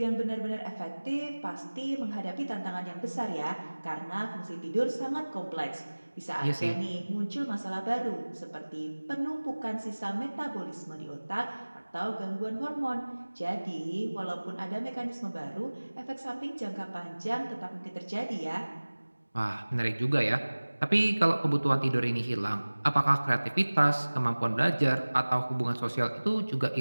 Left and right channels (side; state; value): both; inverted; correlation -1.00